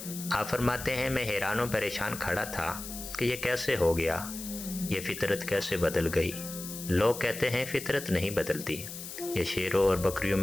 آپ فرماتے ہیں، میں حیران و پریشان کھڑا تھا کہ یہ کیسے ہو گیا، یہ فطرت کیسے بدل گئی؟ لوگ کہتے ہیں فطرت نہیں بدلتی، یہ شیروں اور بکریوں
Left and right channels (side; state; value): left; noise; hiss, 10 dB below the sound